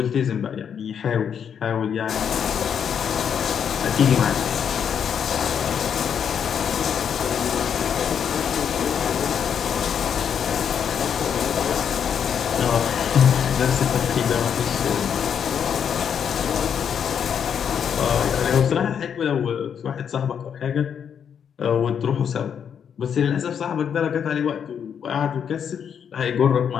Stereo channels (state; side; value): quieter; right; 7.9 dB